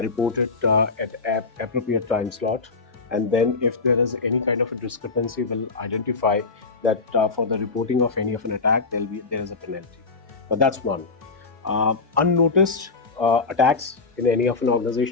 it at appropriate time slot. And then, if there is any kind of a discrepancy, we'll identify that for the reporting of any of an attack, there is a penalty. But that's one. Unnoticed attacks in any of an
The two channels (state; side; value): quieter; right; 4.2 dB